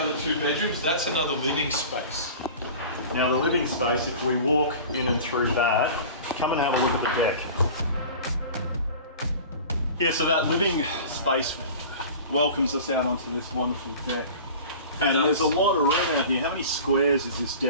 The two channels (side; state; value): both; inverted; correlation -0.38